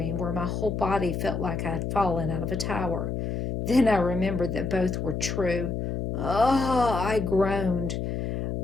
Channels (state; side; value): noise; left; hum, 2 dB below the sound